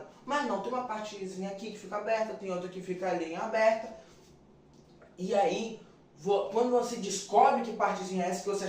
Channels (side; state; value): both; identical; correlation 1.00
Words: Mas não, tem uma partezinha aqui que fica aberta, tem outra que fica ali em aberta. E aí quando você descobre que partezinha é essa que você